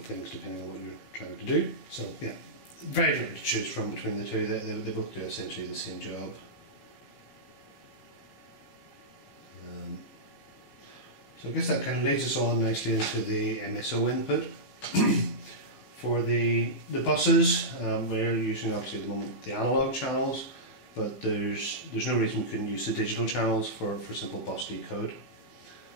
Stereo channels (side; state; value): right; late; 16 ms